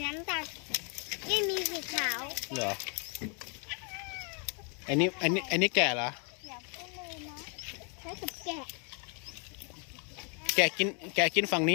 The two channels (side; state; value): right; quieter; 38.1 dB